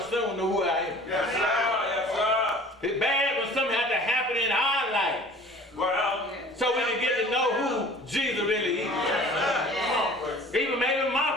soon know who I am. Yes, sir. Yes, sir. It's bad when something has to happen in our life, Well, so we can get to know who Jesus really is. yes, sir. Even maybe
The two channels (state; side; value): normal; both; correlation 0.47